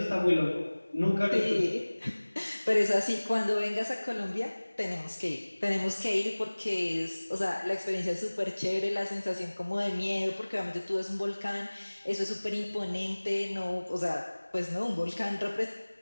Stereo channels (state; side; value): inverted; both; correlation -1.00